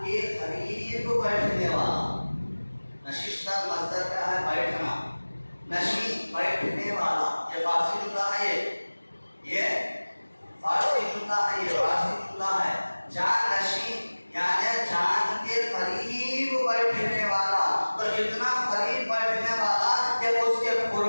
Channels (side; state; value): both; inverted; correlation -1.00